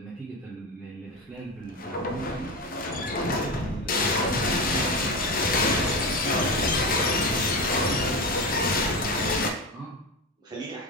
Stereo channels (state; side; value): normal; both; correlation 0.20